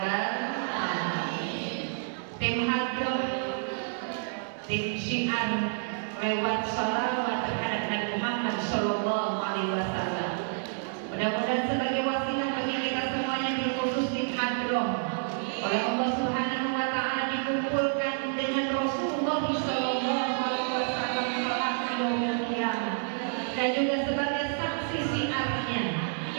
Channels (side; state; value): left; silent; 59 dB below the other